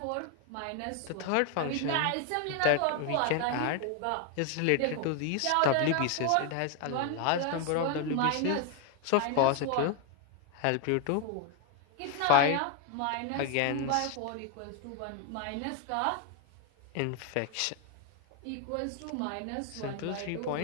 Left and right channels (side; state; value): both; different; correlation 0.01